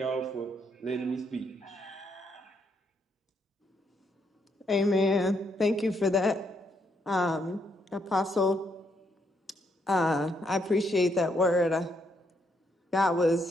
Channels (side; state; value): both; normal; correlation 0.75